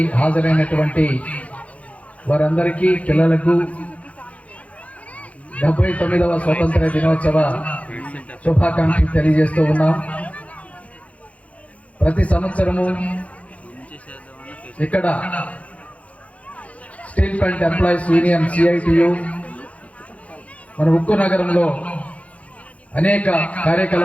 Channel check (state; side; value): late; right; 0.065 ms